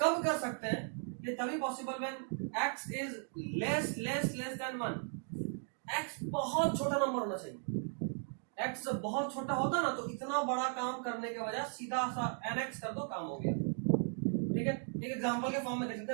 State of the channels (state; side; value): silent; left; 53 dB below the other